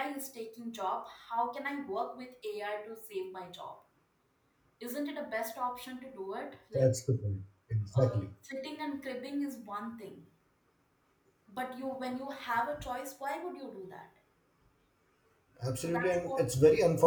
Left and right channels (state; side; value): identical; both; correlation 1.00